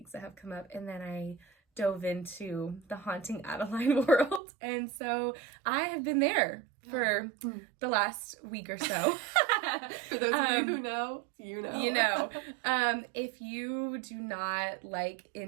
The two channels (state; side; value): drops out; left; at 4.4 s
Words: that have come up, and then I dove into the Haunting Adeline world, and so I have been there for the last week or so. For those of you who know, you know. You know. If you do not like